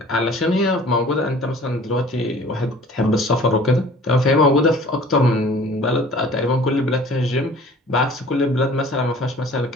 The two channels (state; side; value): normal; both; correlation 0.49